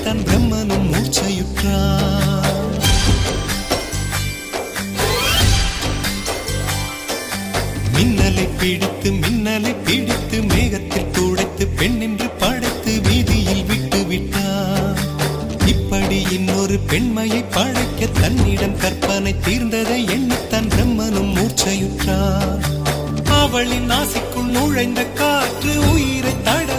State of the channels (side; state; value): both; identical; correlation 1.00